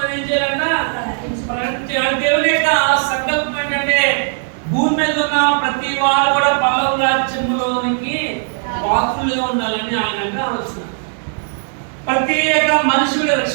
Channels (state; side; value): silent; left; digital silence